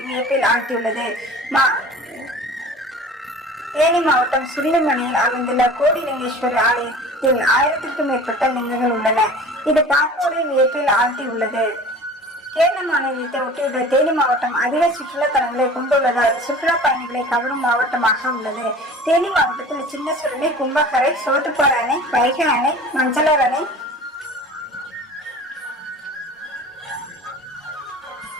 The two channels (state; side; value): normal; both; correlation 0.41